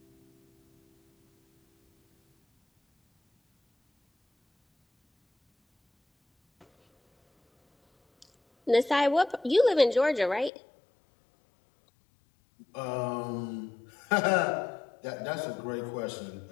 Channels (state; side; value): drops out; right; at 10.5 s